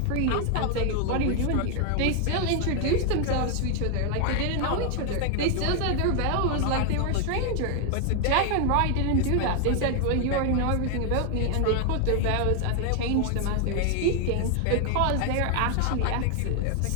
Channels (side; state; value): both; different; correlation 0.00